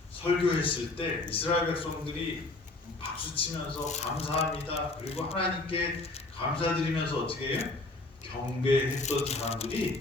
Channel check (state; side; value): quieter; right; 3.1 dB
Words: 설교했을 때 이스라엘 백성들이 박수치면서 감사합니다. 그리고 하나님께 감사드리면서 어떻게 해요? 경배했던 사람들이